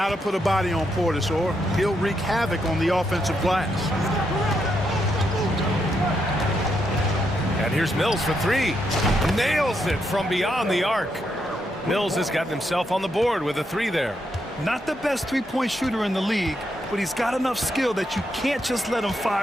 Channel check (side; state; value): both; normal; correlation 0.80